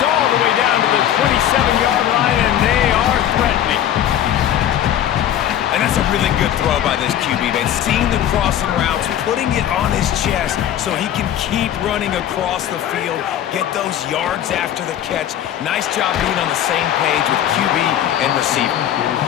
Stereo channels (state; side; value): quieter; right; 11.0 dB